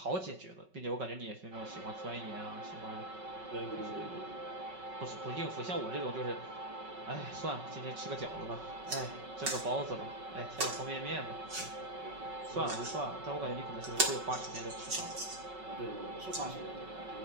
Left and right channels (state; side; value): late; left; 5.4 ms